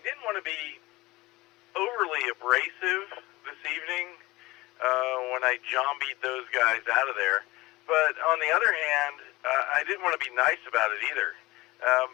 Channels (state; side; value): quieter; right; 20.3 dB